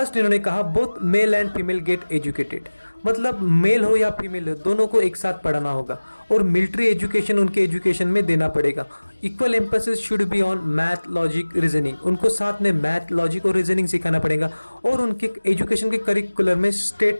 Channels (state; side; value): inverted; both; correlation -1.00